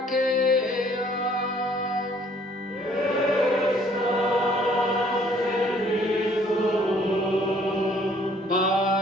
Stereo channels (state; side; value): normal; both; correlation 0.60